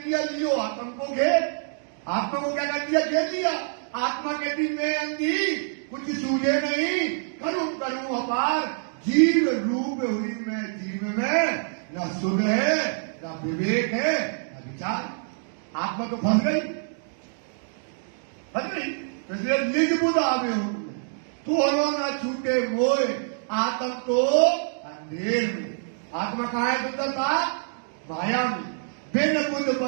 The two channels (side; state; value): left; silent; digital silence